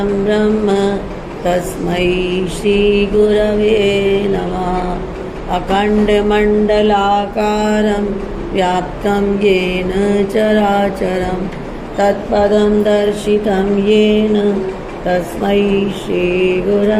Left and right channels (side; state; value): both; identical; correlation 1.00